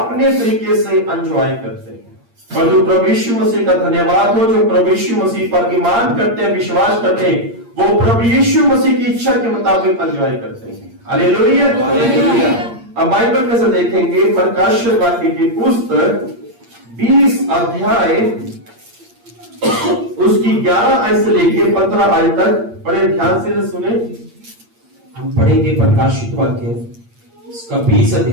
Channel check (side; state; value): left; late; 8.7 ms